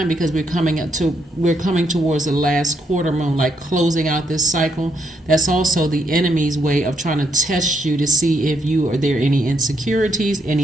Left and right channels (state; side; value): normal; both; correlation 0.77